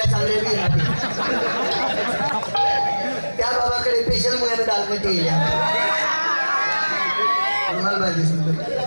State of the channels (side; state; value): both; inverted; correlation -1.00